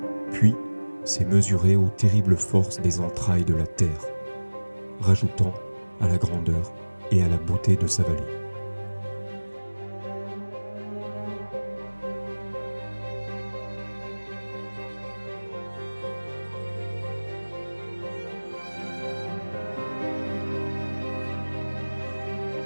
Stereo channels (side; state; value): both; inverted; correlation -1.00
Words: puis s'est mesuré aux terribles forces des entrailles de la terre, rajoutant à la grandeur et à la beauté de sa vallée.